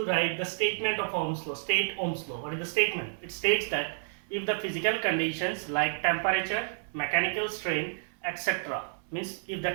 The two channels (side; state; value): left; silent; digital silence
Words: write the statement of Ohm's law. State Ohm's law. What is the statement? It states that if the physical conditions like temperature, mechanical strain, etc. means if the